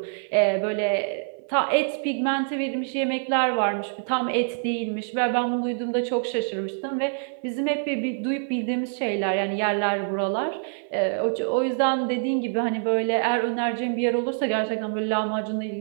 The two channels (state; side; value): silent; left; 55 dB below the other